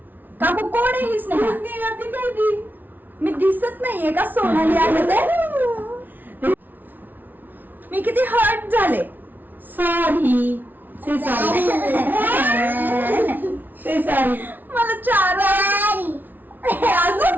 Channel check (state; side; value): late; left; 0.086 ms